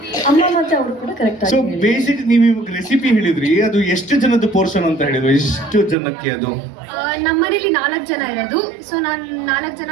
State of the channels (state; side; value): drops out; left; at 6.0 s